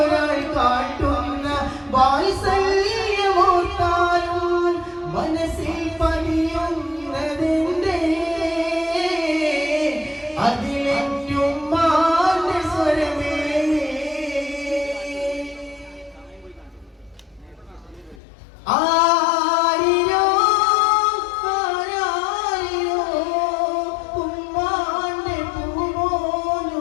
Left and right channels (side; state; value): right; drops out; at 18.2 s